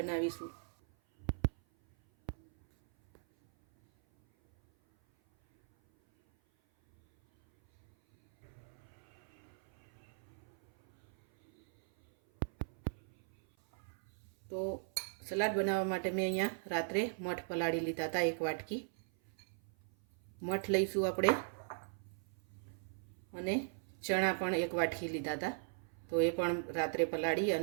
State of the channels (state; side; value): silent; left; 52 dB below the other